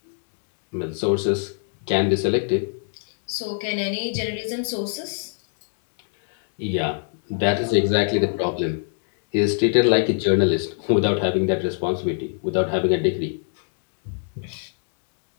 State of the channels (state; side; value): silent; right; digital silence